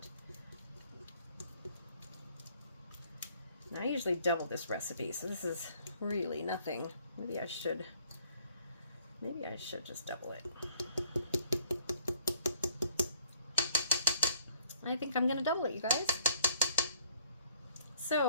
Now, I usually double this recipe, so this is really nothing. Maybe I should just double it. I think I'm gonna double it, you guys.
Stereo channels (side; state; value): both; inverted; correlation -0.60